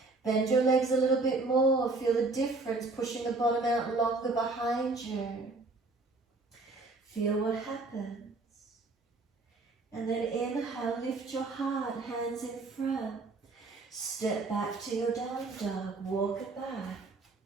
Bend your legs a little bit more. Feel the difference, pushing the bottom out longer behind you. Feel what happens. And then inhale, lift your heart, hands in front. Step back to your down dog, walk it back.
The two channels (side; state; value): left; quieter; 3.5 dB